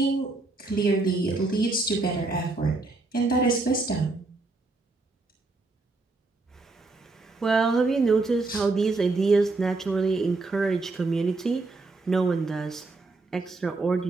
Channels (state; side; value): quieter; left; 3.4 dB